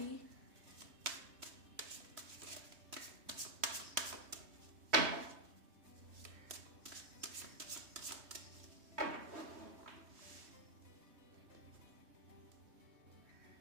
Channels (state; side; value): late; left; 3.2 ms